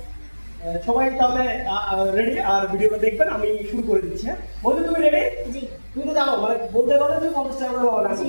সবাই তাহলে রেডি, আর ভিডিওটা দেখবেন। আমি শুরু করে দিচ্ছি। হ্যাঁ বলছি, তুমি রেডি? জি। তুমি তো জানো মানে বলতে পারলে তুমি 50 টাকা করে পাবে,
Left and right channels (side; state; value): both; inverted; correlation -1.00